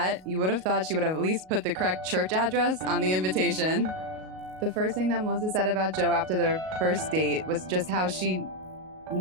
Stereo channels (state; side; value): late; left; 38 ms